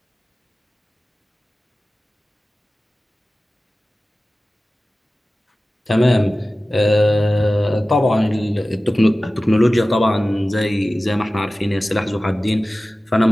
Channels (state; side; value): normal; both; correlation 0.96